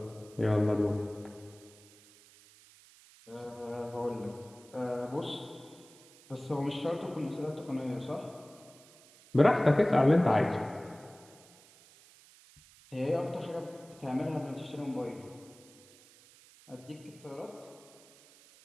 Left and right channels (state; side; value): noise; right; hiss, 24 dB below the sound